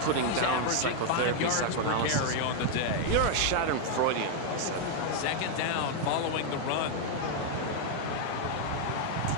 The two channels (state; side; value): different; both; correlation 0.00